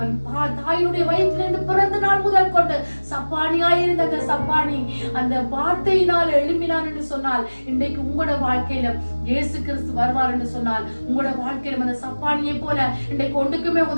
தாயினுடைய வயிற்றிலிருந்து பிறந்த நாள் முதல் கொண்டு சப்பானியாயிருந்த அந்த சப்பானி அந்த வார்த்தையினால் எழும்பினான் என்று சொன்னால், இன்றைக்கு உங்களோட வாழ்க்கையில இயேசு கிறிஸ்து வருவார் என்று சொன்னால், உங்களோட வாழ்க்கையில அந்த சப்பானியை போல இன்றைக்கு ஒன்றுக்குமே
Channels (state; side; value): inverted; both; correlation -1.00